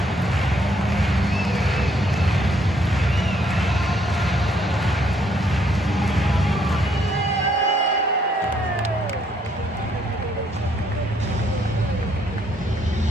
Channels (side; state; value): both; normal; correlation 0.69